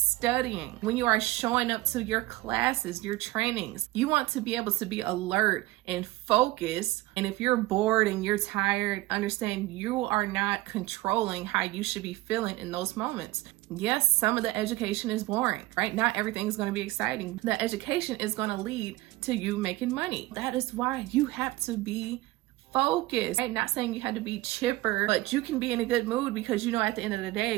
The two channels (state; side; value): quieter; left; 18.9 dB